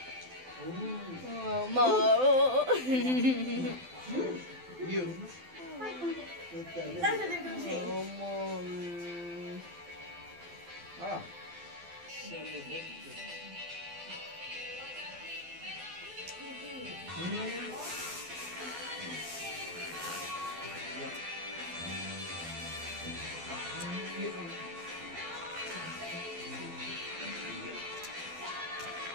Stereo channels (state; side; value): late; left; 12 ms